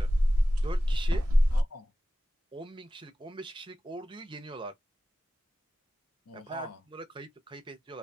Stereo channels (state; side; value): normal; both; correlation 0.95